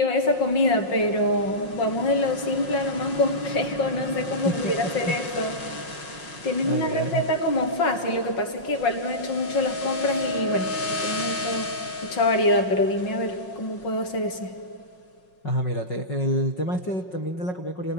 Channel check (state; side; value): late; right; 5.5 ms